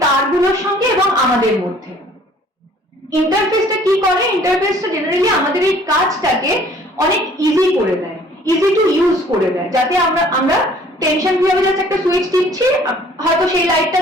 তারগুলোর সঙ্গে এবং আমাদের মধ্যে। ইন্টারফেসটা কি করে, ইন্টারফেসটা জেনারেলি আমাদের এই কাজটাকে অনেক ইজি করে দেয়, ইজি টু ইউজ করে দেয়, যাতে আমরা টেনশন ফ্রি হবে, জাস্ট একটা সুইচ টিপছি, হয়তো সেই লাইটটা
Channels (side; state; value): both; normal; correlation 0.55